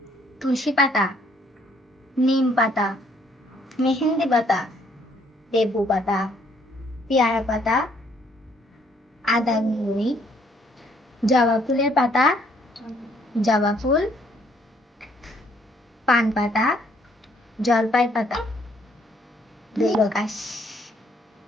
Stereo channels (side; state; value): both; normal; correlation 0.66